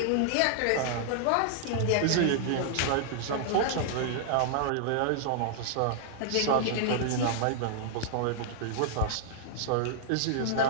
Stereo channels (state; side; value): different; both; correlation -0.01